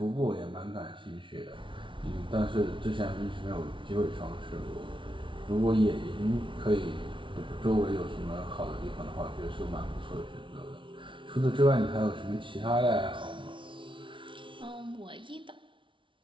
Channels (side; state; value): left; late; 0.25 ms